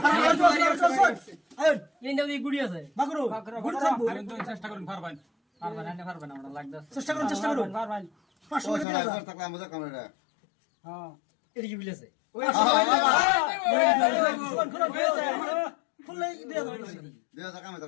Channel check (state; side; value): drops out; right; at 8.8 s